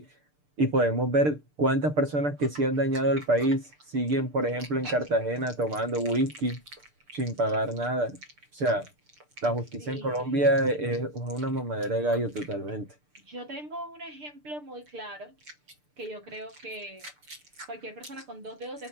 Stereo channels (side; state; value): left; late; 6.7 ms